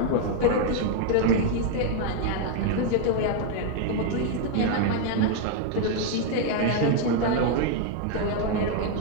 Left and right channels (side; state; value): both; different; correlation 0.01